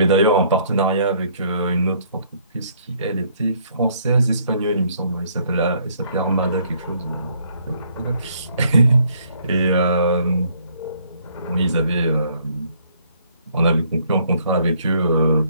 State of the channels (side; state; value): both; inverted; correlation -0.65